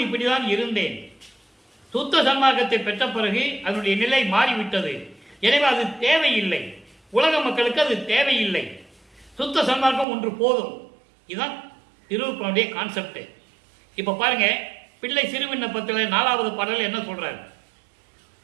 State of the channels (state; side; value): drops out; left; at 10.1 s